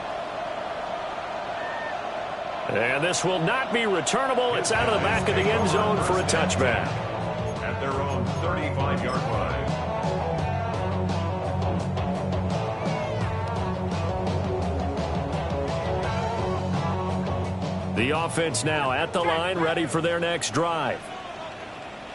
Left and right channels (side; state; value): both; identical; correlation 1.00